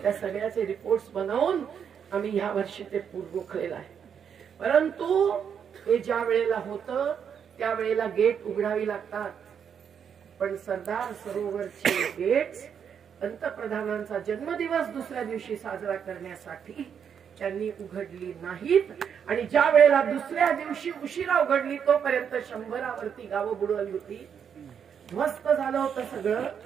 त्या सगळ्याचे रिपोर्ट्स बनवून आम्ही ह्या वर्षी ते रोखलेलं आहे. परंतु हे ज्या वेळेला होतं त्यावेळेला गेट उघडावी लागतात. पण सरदार सरोवरचे गेट्स पंतप्रधानांचा जन्मदिवस दुसऱ्या दिवशी साजरा करण्यासाठी त्यांनी उघडली नाहीत. आणि ज्या वेळेला दुसऱ्या दिवशी उशिरा उघडली तोपर्यंत 100वरती गावं बुडवली होती. ध्वस्त झालं होतं सगळं.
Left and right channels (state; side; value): quieter; left; 7.7 dB